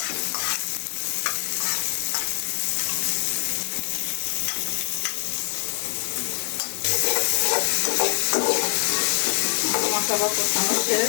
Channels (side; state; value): right; silent; digital silence